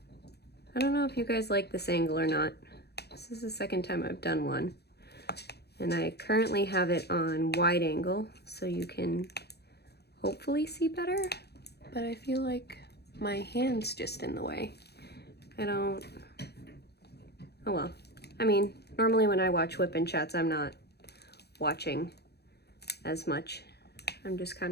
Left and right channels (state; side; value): late; right; 0.48 ms